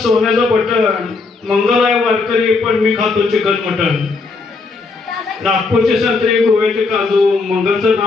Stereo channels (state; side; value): quieter; right; 4.1 dB